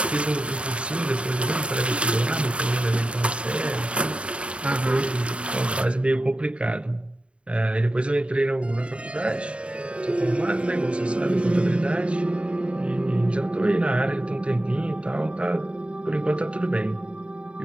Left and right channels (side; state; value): left; late; 0.059 ms